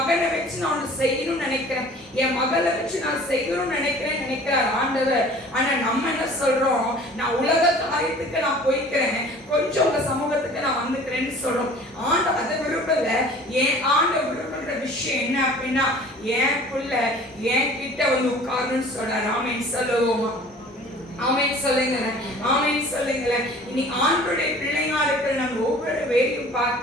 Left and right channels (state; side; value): normal; both; correlation 0.47